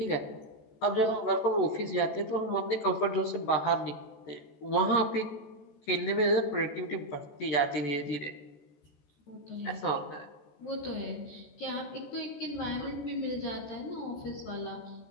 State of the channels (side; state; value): right; late; 14 ms